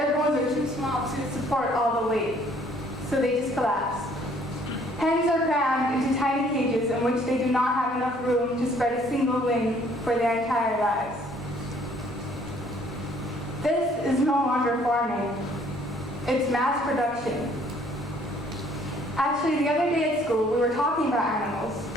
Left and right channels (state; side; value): normal; both; correlation 0.60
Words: bones are too small to support all the weight, so they just collapse. Hens are crammed into tiny cages in which they do not have enough room to spread a single wing for their entire lives. This is no longer farming. It's mass production. Actually, the other day at school, we were talking about animals.